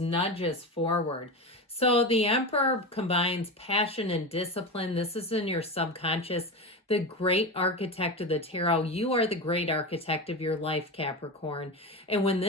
forward. So the Emperor combines passion and discipline. This is in your subconscious. The great architect of the tarot. You are the great architect of your life, Capricorn. And when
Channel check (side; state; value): both; normal; correlation 0.22